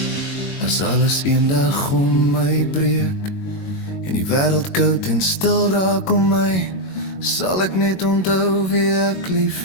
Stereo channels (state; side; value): late; right; 21 ms